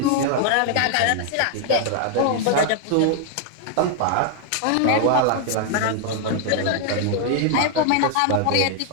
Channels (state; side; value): different; both; correlation 0.00